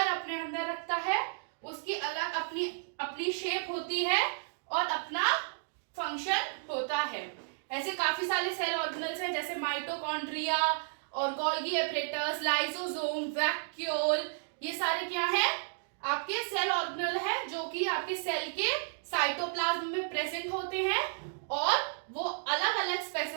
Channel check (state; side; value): silent; left; digital silence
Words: अपने अंदर रखता है, उसकी अलग अपनी शेप होती है और अपना फंक्शन होता है। ऐसे काफी सारे सेल ऑर्गेनल्स हैं जैसे माइटोकॉन्ड्रिया और गोल्गी एपरेटस, लाइसोसोम, वैक्यूल, ये सारे क्या है आपके सेल ऑर्गेनल है जो कि आपके सेल के साइटोप्लाज्म में प्रेजेंट होते हैं और वो अलग अलग